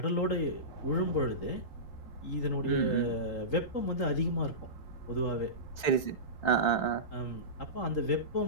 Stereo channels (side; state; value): right; late; 3.5 ms